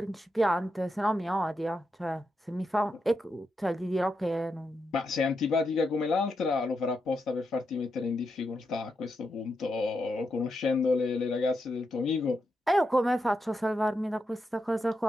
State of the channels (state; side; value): normal; both; correlation 0.85